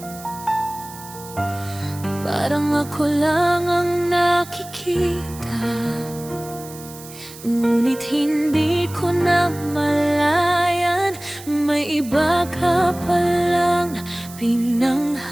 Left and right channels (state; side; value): noise; right; hiss, 17 dB below the sound